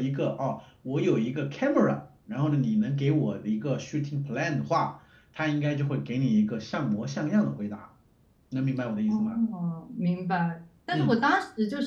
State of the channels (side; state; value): both; identical; correlation 1.00